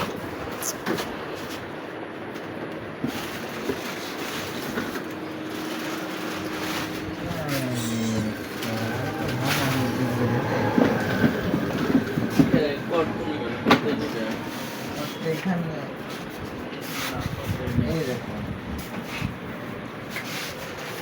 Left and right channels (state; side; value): identical; both; correlation 1.00